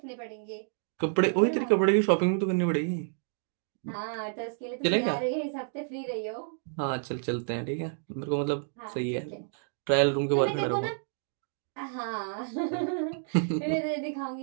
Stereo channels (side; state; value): left; silent; digital silence